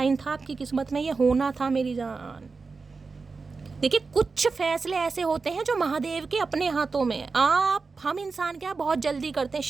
था, आपकी किस्मत में ये होना था मेरी जान। देखिए कुछ फैसले ऐसे होते हैं जो महादेव के अपने हाथों में है। हम इंसान क्या बहुत जल्दी करते हैं,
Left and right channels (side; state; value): left; quieter; 4.4 dB